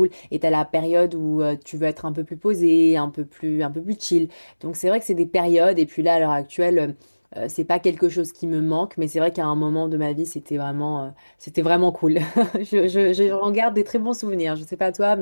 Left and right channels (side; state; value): both; inverted; correlation -1.00